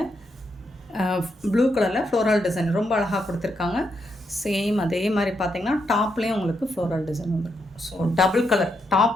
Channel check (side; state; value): both; normal; correlation 0.80